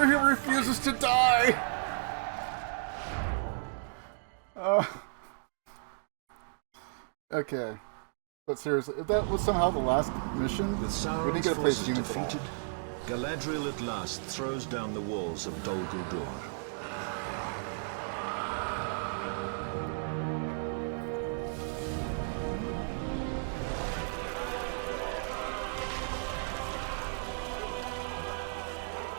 he refuses to die. Okay. But seriously, if that was somehow the last mission, With we didn't Sauron's get to play forces humans at all. defeated, Galadriel at last throws down the walls of Dol Guldur.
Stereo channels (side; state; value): left; silent; digital silence